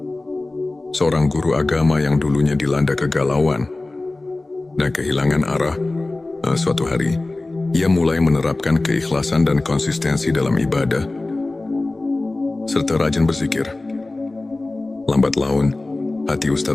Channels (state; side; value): quieter; right; 3.0 dB